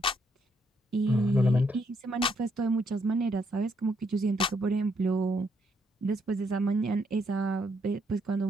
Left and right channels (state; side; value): normal; both; correlation 0.74